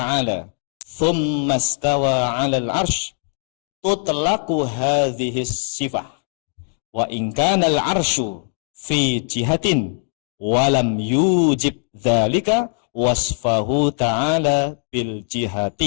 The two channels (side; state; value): right; silent; digital silence